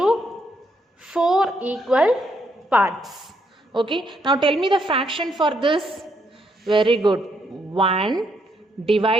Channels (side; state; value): both; normal; correlation 0.74